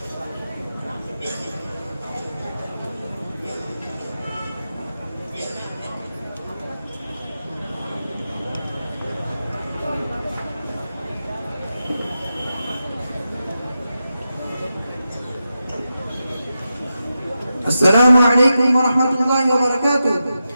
अस्सलामु अलैकुम व रहमतुल्लाहि व बरकातुहू।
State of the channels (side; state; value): both; inverted; correlation -0.90